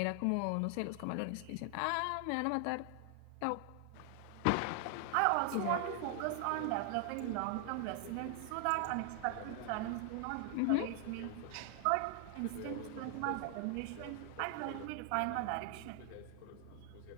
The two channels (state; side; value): different; both; correlation 0.00